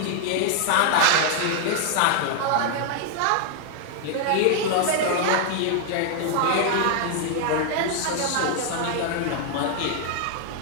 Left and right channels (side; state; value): both; different; correlation 0.00